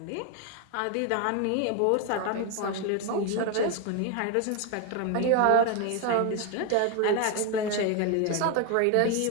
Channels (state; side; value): different; both; correlation 0.01